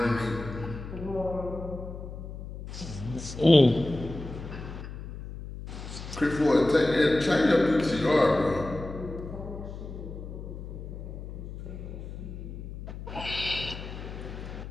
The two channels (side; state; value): left; noise; hum, 10 dB below the sound